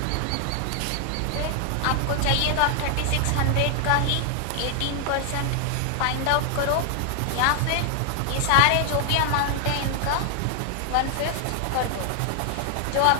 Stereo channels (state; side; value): different; both; correlation 0.00